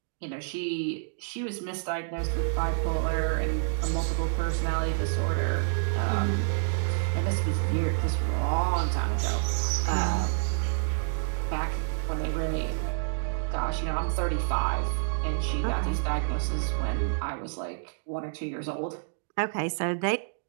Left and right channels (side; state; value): left; silent; digital silence